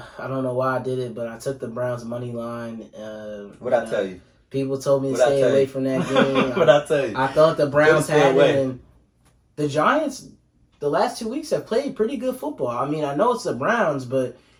don't know why I did it, but I took the Browns money line. what I tell you. People told me to What'd I stay tell away you? from that game. What I tell you. I thought the Browns Stay had away. it, and the Giants, the last 2 weeks, have played pretty good football. I mean, I know it's the Browns, but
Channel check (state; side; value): identical; both; correlation 1.00